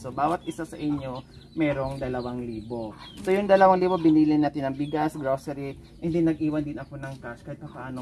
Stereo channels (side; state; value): both; identical; correlation 1.00